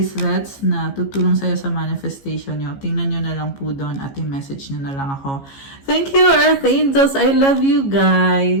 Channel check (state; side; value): late; right; 15 ms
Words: na tutulong sa'yo sa manifestation nyo. Tingnan nyo na lang po doon at i-message nyo na lang ako. Thank you, Earth Angels. I love you